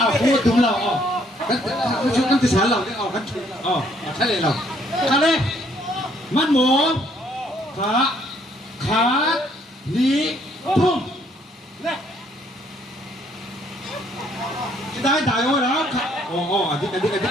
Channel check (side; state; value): both; normal; correlation 0.66